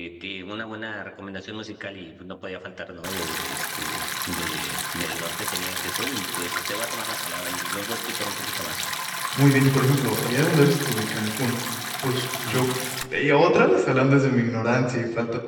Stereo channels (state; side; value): identical; both; correlation 1.00